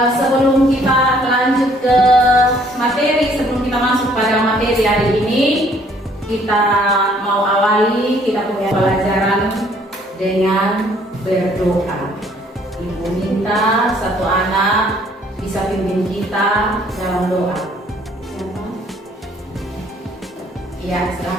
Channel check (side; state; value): both; normal; correlation 0.61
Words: Sebelum kita lanjut ke materi, sebelum kita masuk pada materi hari ini, kita mau awali kita punya pelajaran dengan berdoa. Ibu minta satu anak bisa pimpin kita dalam doa. Siapa? Iya,